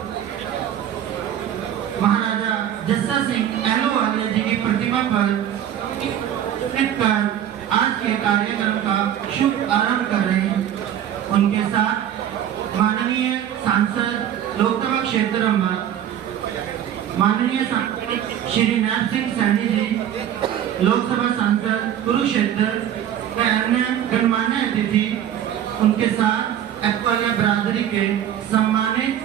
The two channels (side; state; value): left; quieter; 10.3 dB